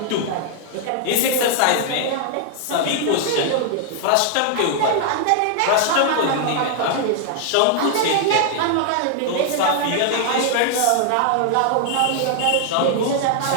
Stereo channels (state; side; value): different; both; correlation 0.00